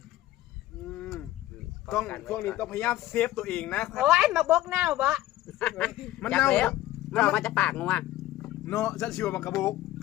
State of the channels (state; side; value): quieter; right; 15.3 dB